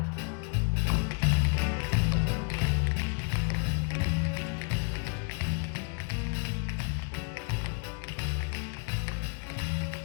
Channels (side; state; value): right; quieter; 36.2 dB